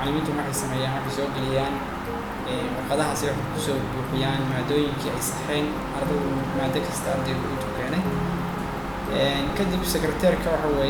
waxay sameeyaan waxay soo geliyaan warqadahaasi waxay kusoo buuxiyaan maadooyinkii ay saxeen ardaydu maado kasta ardaygu intuu keenay. kadib secretaryka waxa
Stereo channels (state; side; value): identical; both; correlation 1.00